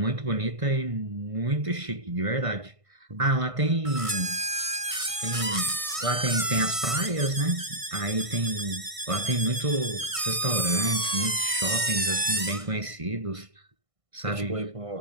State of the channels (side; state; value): left; late; 1.6 ms